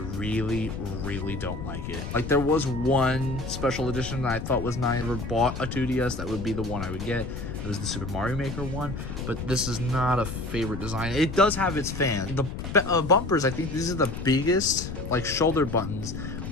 don't like it. Like, there was one special edition that I thought was nice. I never bought a 2DS, that would be the one I would get. It was the Super Mario Maker one, but this is not a favorite design. It does have its fans. The bumpers, I think these are the biggest like shoulder buttons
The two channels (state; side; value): noise; left; rumble, 7 dB below the sound